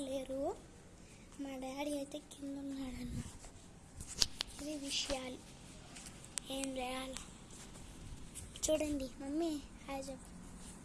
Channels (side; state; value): both; identical; correlation 1.00